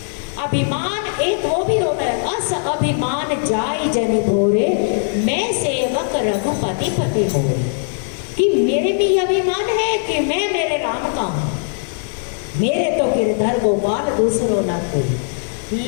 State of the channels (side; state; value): right; silent; digital silence